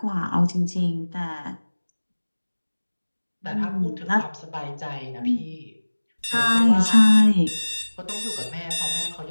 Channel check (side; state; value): both; inverted; correlation -1.00